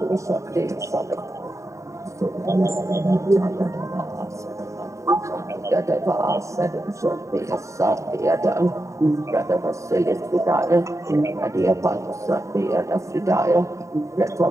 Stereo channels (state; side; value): late; left; 0.15 ms